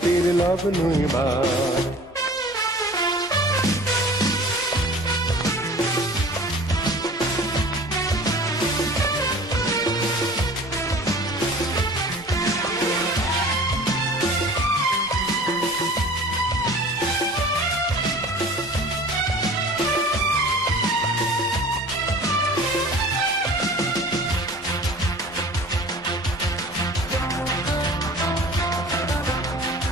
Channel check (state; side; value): normal; both; correlation 0.43